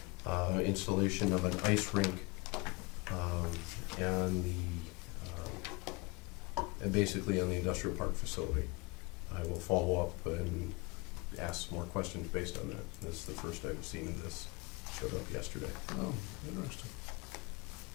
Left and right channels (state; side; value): quieter; right; 25.8 dB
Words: installation of an ice rink and basically on the industrial park facility. I will follow up and ask more questions based on that. This is the first I've seen of this. Showed up yesterday. Oh, interesting.